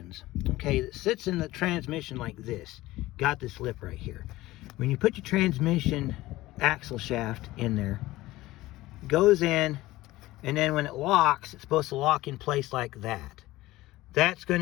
Okay, it sits in the transmission like this. Got this lip right here. When you put your transmission axle shaft in there, it goes in, and then when it locks, it's supposed to lock in place like that. That's going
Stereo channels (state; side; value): quieter; right; 17.7 dB